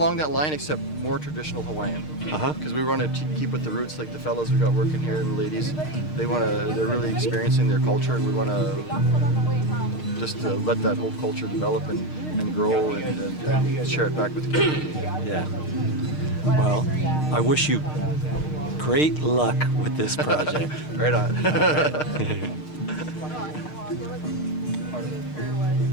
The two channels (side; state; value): right; late; 6.5 ms